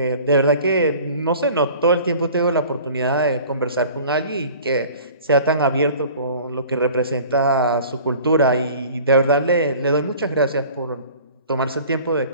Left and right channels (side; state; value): both; inverted; correlation -0.46